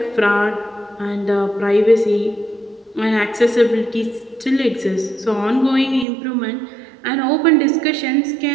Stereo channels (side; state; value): left; drops out; at 6.1 s